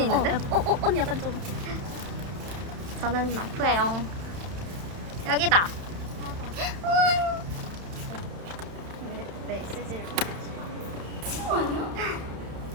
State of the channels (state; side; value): late; left; 31 ms